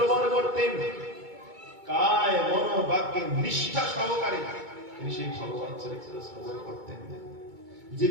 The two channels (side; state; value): left; late; 2.2 ms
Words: করতেন। কায় মন বাক্যে নিষ্ঠা সহকারে তিনি সেই ভগবান চরিত্র শ্রবণ করতেন। যে